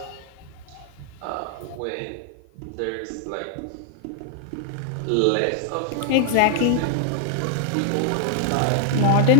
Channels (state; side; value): different; both; correlation 0.00